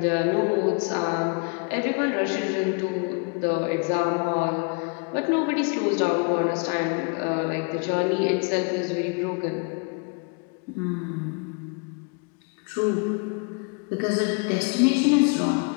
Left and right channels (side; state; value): right; quieter; 34.5 dB